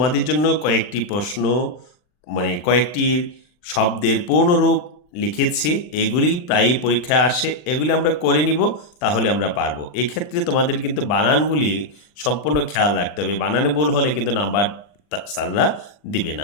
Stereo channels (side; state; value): right; late; 39 ms